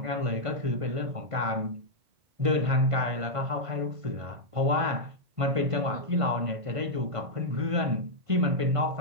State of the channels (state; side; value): late; left; 1.5 ms